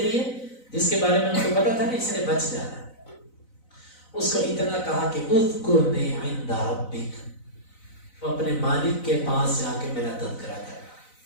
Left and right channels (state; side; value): late; right; 4.0 ms